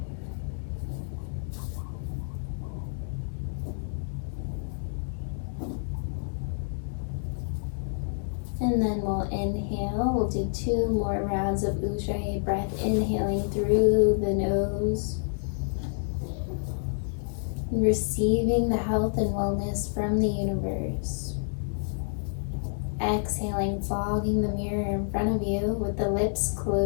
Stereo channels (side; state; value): right; silent; digital silence